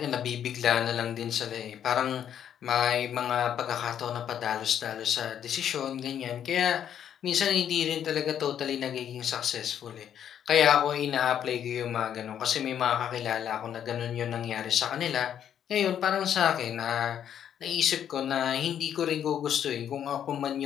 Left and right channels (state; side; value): quieter; right; 9.4 dB